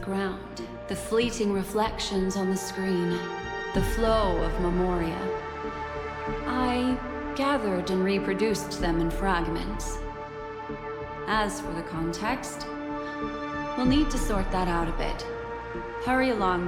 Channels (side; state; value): both; identical; correlation 1.00